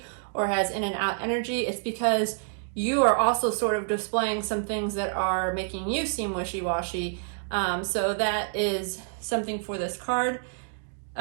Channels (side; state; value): left; silent; 60 dB below the other